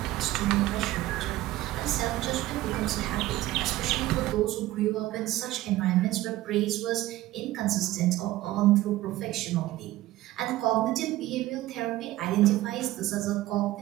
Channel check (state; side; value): quieter; left; 16.1 dB